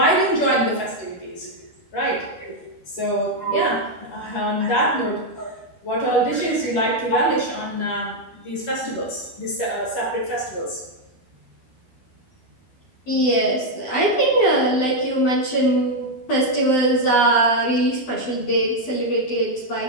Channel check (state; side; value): late; right; 12 ms